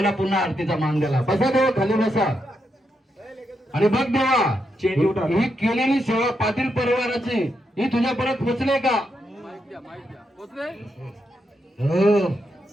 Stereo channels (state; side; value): normal; both; correlation 0.82